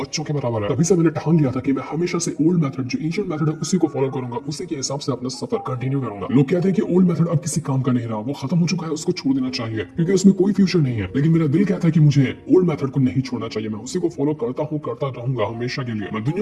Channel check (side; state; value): both; identical; correlation 1.00